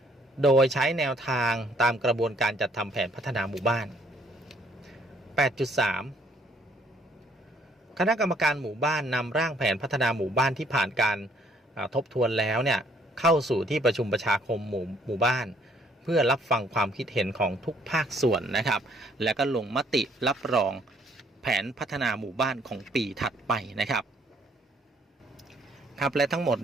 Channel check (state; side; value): normal; both; correlation 0.65